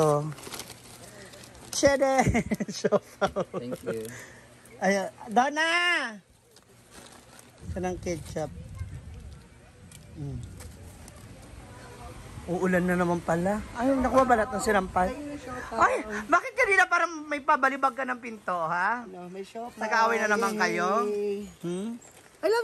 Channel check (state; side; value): identical; both; correlation 1.00